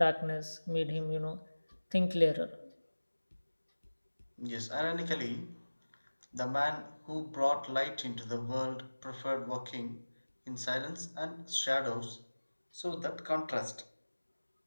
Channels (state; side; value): inverted; both; correlation -1.00